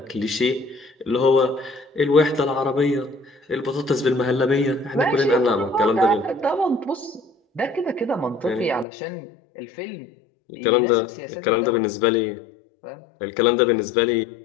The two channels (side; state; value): right; drops out; at 8.8 s